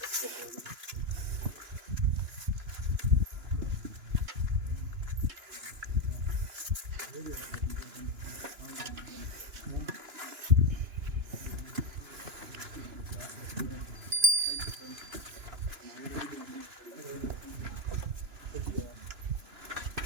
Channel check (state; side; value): late; left; 2.9 ms